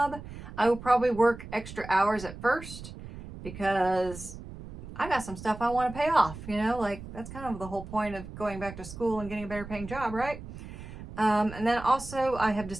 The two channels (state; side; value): noise; right; rumble, 12 dB below the sound